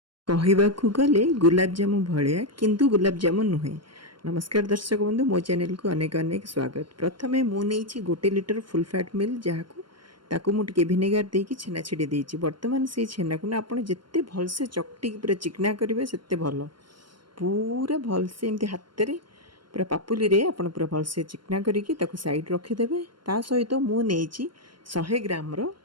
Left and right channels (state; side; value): late; left; 0.72 ms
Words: कहवाकू गले गुलाबजामु भलिया किंतु गुलाबजामुन नुहे। नमस्कार दर्शक बंधु, मो चैनल को अनेक अनेक स्वागत। प्रथमे मु नहीं 1 लिटर फुल फैट मिल जहाँ ताकू मु टिके भिनेगार देकी छेना छिड़ी देइछि। वर्तमान से छेना को ना आपण जेते भलसे चकटी पूरा चिकना करिवे सेते भल। पूरा भलसे एमती हाथ रे पूरा पापुली रे आपण पूरा भलसे चिकना करिकी ताकू साइड रखी देबे। ता सहित मु नेइछि 100 ग्राम रो